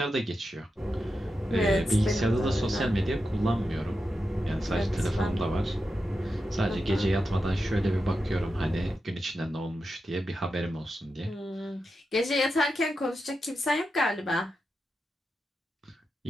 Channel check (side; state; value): both; normal; correlation 0.89